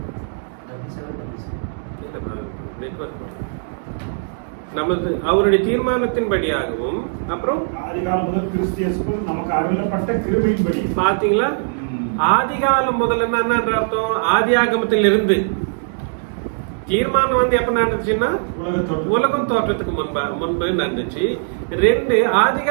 அவருடைய தீர்மானத்தின்படியாகவும் அப்புறம் ஆதிகாலம் முதல் கிறிஸ்து இயேசுக்குள் நமக்கு அருளப்பட்ட கிருபையின்படி. பாத்தீங்களா, ஆதிகாலம் முதல்ல என்னன்ற அர்த்தம், ஆதியாகமத்தில் இருந்து. தீர்மானம் வந்து எப்ப நடந்துச்சுன்னா உலகம் தோற்றத்துக்கு முன்பு நடந்துச்சு. 2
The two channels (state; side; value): silent; left; digital silence